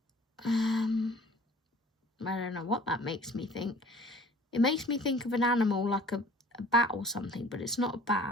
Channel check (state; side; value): normal; both; correlation 0.49